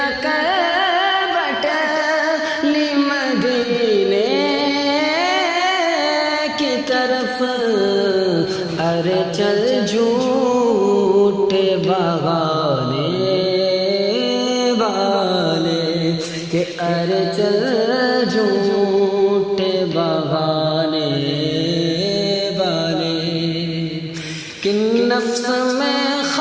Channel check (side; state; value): both; identical; correlation 1.00